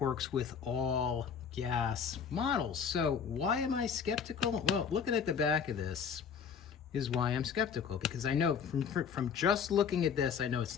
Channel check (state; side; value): quieter; right; 6.9 dB